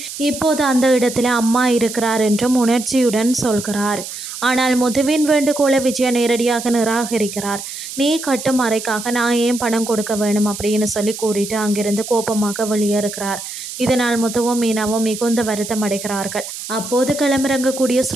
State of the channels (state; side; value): noise; right; hiss, 9 dB below the sound